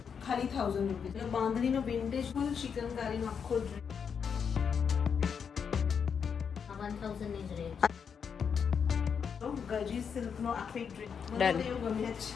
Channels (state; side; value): quieter; right; 6.8 dB